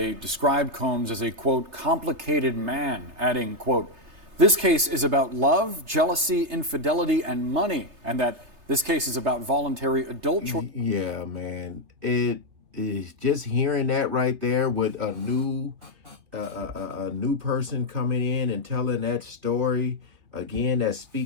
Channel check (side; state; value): left; late; 3.3 ms